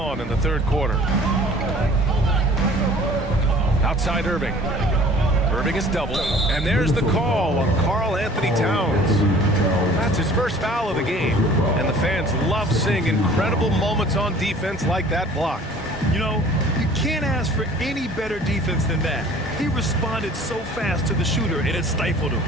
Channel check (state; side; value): normal; both; correlation 0.50